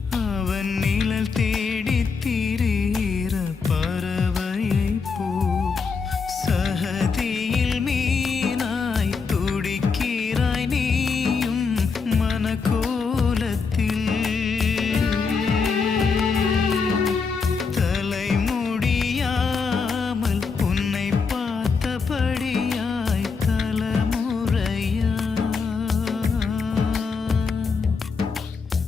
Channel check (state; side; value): quieter; right; 5.1 dB